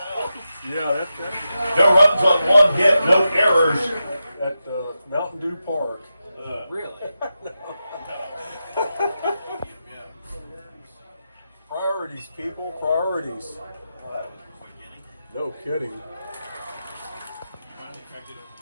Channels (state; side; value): inverted; both; correlation -0.90